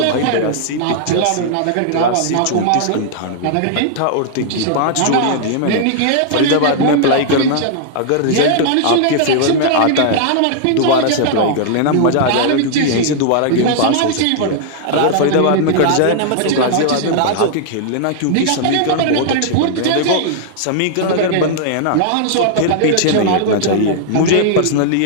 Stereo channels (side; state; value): both; different; correlation -0.01